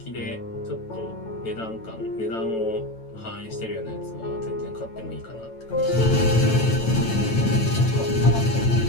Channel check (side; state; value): right; late; 9.0 ms